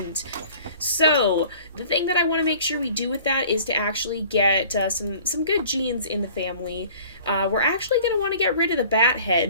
So the thing that I want to make sure we do with that is to actually get some good genes in the family. We're actually going to want to get rid of the bat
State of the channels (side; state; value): both; inverted; correlation -0.48